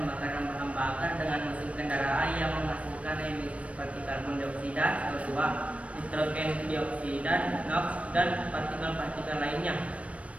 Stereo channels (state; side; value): late; left; 0.064 ms